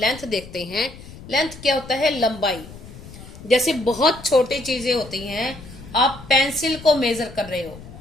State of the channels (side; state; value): left; noise; rumble, 16 dB below the sound